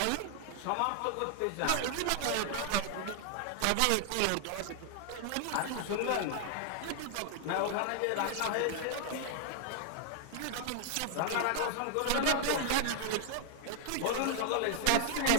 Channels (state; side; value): different; both; correlation 0.00